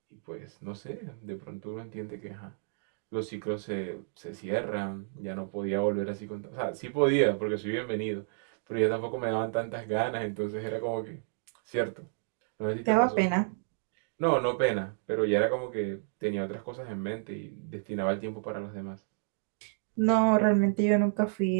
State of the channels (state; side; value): silent; left; digital silence